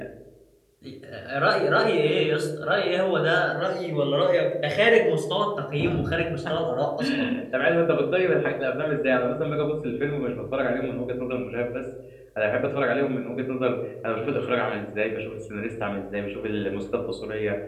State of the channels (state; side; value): identical; both; correlation 1.00